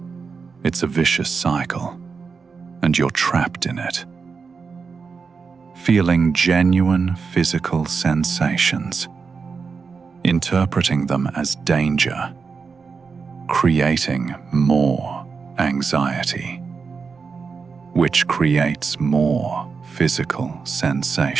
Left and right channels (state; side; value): quieter; left; 5.2 dB